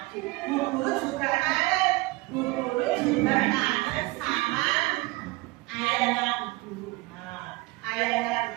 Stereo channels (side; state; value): left; quieter; 22.2 dB